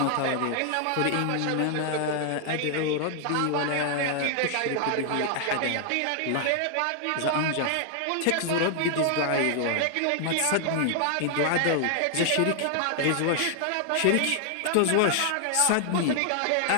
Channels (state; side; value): different; both; correlation 0.00